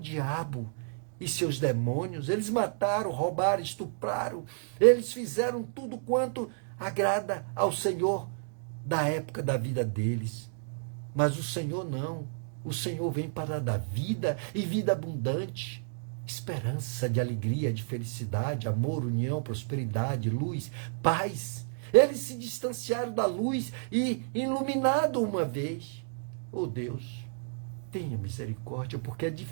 e seus demônios. Eles mataram, roubaram, estupraram, eles fizeram tudo quanto agrada ao Senhor da época da vida deles. Mas o Senhor não. O Senhor vem para dar vida e vida abundante, esperança de alegria, de felicidade, amor, união, prosperidade, luz, paz. Eles se distanciaram da luz e iluminado uma vez. Oh Deus, tenha misericórdia, porque é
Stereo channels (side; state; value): left; silent; digital silence